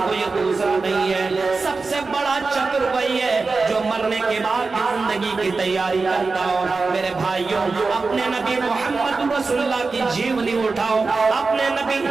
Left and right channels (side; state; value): left; quieter; 4.1 dB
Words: کوئی دوسرا نہیں ہے۔ سب سے بڑا چتر وہی ہے جو مرنے کے بعد کی زندگی کی تیاری کرتا ہو۔ میرے بھائیوں، اپنے نبی محمد رسول اللہ کی جیونی اٹھاؤ، اپنے نبی